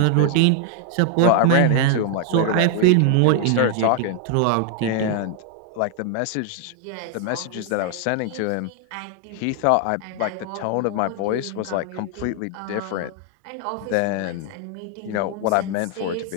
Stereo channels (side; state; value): both; different; correlation 0.00